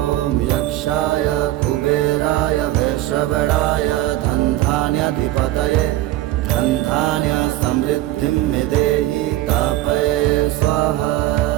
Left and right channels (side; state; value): left; quieter; 15.6 dB